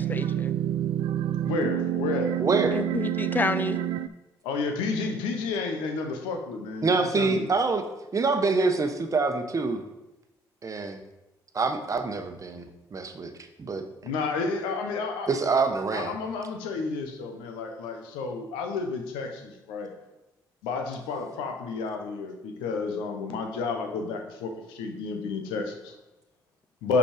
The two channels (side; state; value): both; normal; correlation 0.52